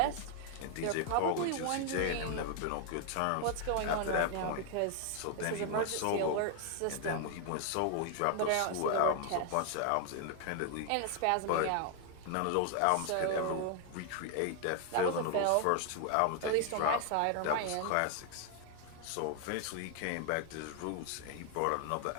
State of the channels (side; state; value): both; different; correlation 0.00